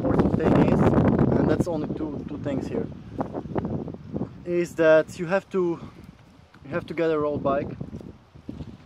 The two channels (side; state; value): both; identical; correlation 1.00